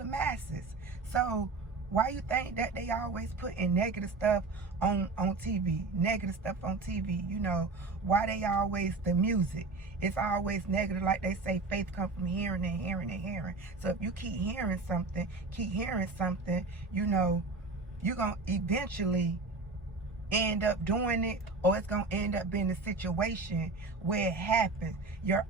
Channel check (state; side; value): quieter; left; 3.7 dB